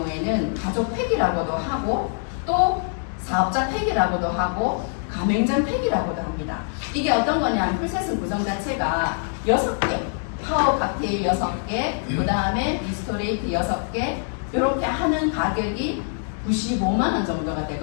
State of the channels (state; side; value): silent; right; 60 dB below the other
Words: 가족 팩이라고도 하고, 또 사업자 팩이라고도 하고, 가맹점 팩이라고도 합니다. 이게 어떤 거냐면 풀셋은 구성 자체가 6개, 파워 칵테일 6개, 그 다음에 리스토레이트 6개, 이렇게 하는 가격이 95만 원 정도가